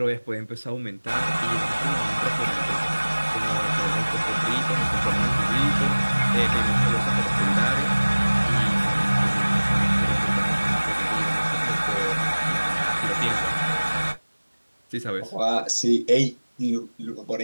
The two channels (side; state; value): both; inverted; correlation -1.00